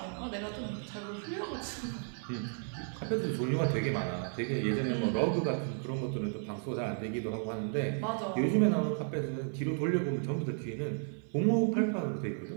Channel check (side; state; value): left; silent; 55 dB below the other